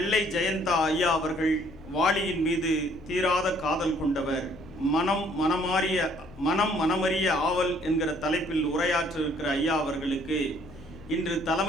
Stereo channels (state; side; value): normal; both; correlation 0.62